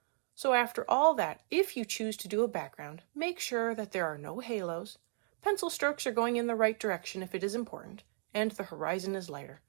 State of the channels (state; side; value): silent; left; 54 dB below the other